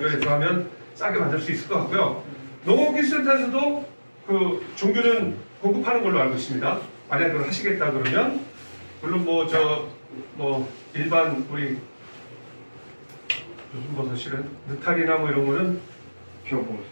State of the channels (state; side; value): inverted; both; correlation -1.00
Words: 하면 싸게 만들 수 있을 것 같고요. 농업기술센터에서도 그 종균은 공급하는 걸로 알고 있습니다. 만약 그걸 하시겠다 그러면 물론 뭐 일반 우리 무슨 버섯이래 느타리나 뭐 이런 거는